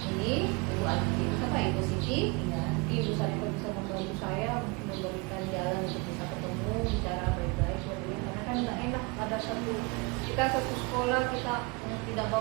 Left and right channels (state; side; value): quieter; left; 27.7 dB